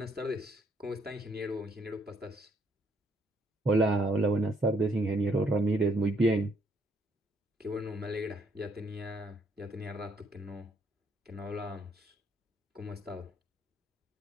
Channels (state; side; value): normal; both; correlation 0.70